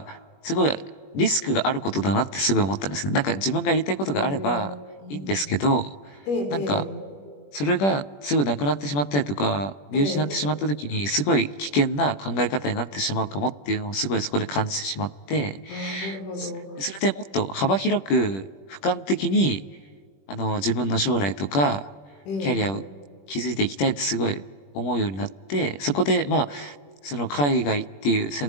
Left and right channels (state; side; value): late; right; 21 ms